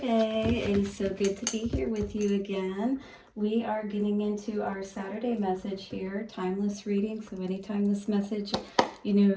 It is so good to be here with you again. We are getting into our Saturday message here, timeless reading. So anytime this message,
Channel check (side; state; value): both; identical; correlation 1.00